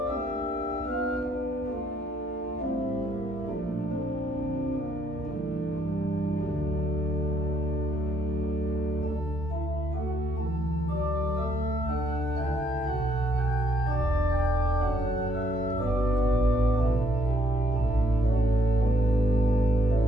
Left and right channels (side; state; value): both; normal; correlation 0.71